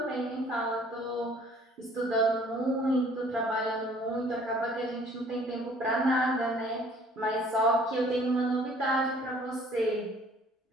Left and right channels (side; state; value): both; normal; correlation 0.56